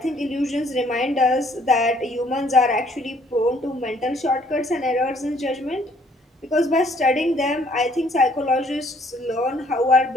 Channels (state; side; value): normal; both; correlation 0.63